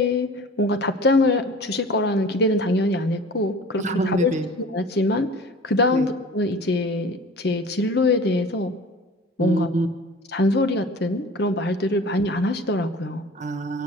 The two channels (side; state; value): both; normal; correlation 0.42